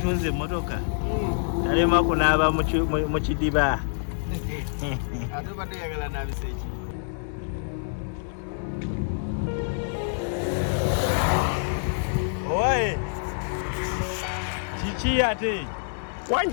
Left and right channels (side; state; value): right; silent; 61 dB below the other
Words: emmotoka. Talema kunaaba mu kidiba. Ate badde yagala naabisa eki? Owaye. Kiki ate?